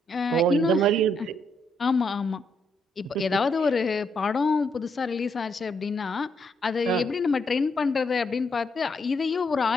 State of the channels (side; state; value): both; normal; correlation 0.76